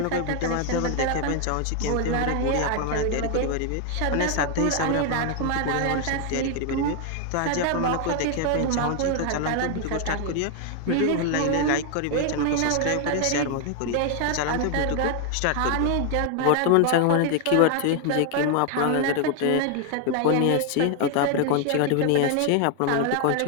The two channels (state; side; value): different; both; correlation 0.00